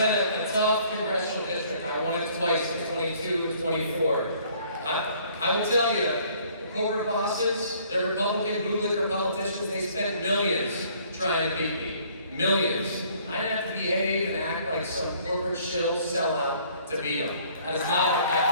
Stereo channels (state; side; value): inverted; both; correlation -0.59